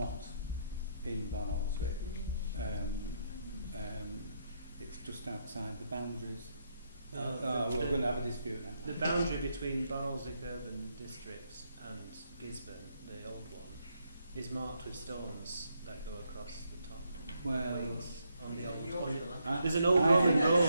in Barnoldswick. It's just outside the boundaries. We're going to have a dispute now. The boundary between Barnoldswick Urban District and Gisborne, the old one, is marked with stones that go across the top. Well, On the old there's an old Roman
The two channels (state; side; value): inverted; both; correlation -0.77